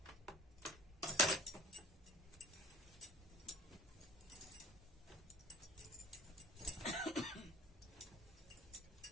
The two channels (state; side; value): normal; both; correlation 0.44